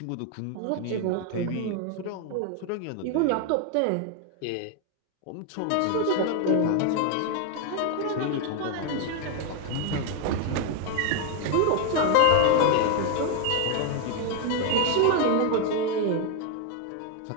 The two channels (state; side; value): different; both; correlation 0.01